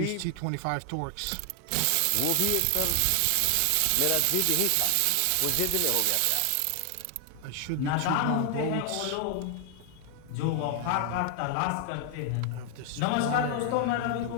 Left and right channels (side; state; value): both; different; correlation 0.00